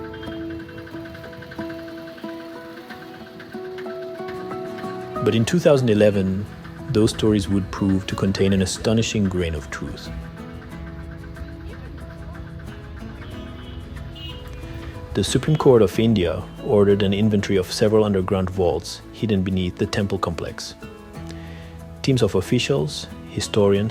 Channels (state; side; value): identical; both; correlation 1.00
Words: But in 2011, those stories would prove to contain an astonishing grain of truth. The Supreme Court of India ordered an inventory of several underground vaults hidden beneath the temple complex. Teams of officials,